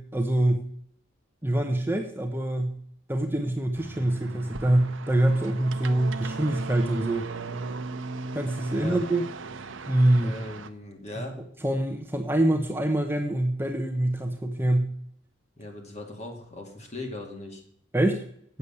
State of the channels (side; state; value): both; normal; correlation 0.91